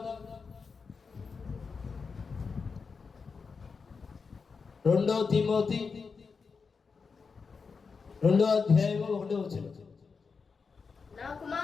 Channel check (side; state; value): right; quieter; 5.1 dB